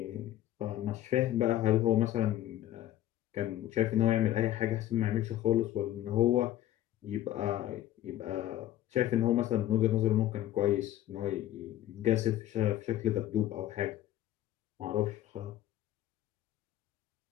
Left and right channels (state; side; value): quieter; right; 13.2 dB